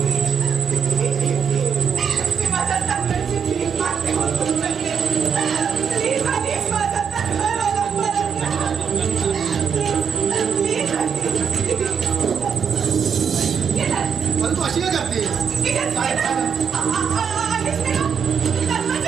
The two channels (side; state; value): left; quieter; 7.0 dB